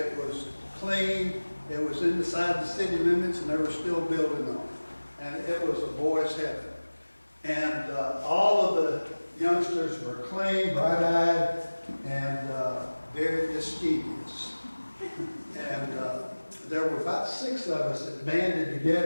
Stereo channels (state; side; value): inverted; both; correlation -1.00